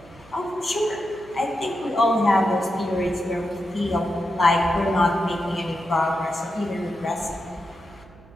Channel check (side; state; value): right; noise; hum, 24 dB below the sound